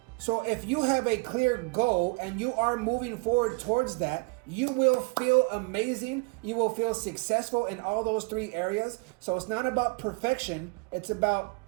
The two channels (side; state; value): left; quieter; 28.2 dB